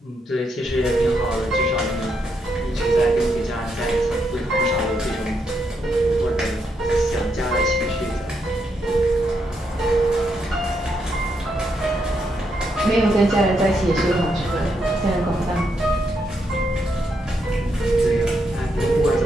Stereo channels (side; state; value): both; normal; correlation 0.79